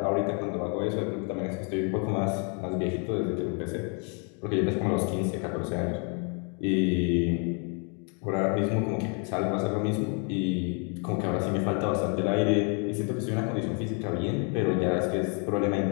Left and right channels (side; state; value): right; quieter; 38.2 dB